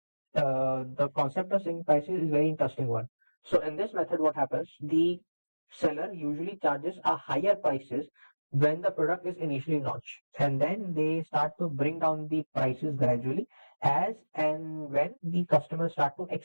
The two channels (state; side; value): inverted; both; correlation -1.00